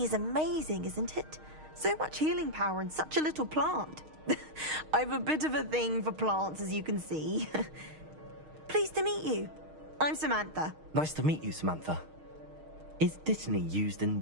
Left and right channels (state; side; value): late; left; 6.4 ms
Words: is amazing, isn't it? So much healing power in such a little plant. I've a bit of a thing for plants, as you can see. Pleased to meet you. I'm Samantha. Nice to meet you, Samantha. Is Dittany used in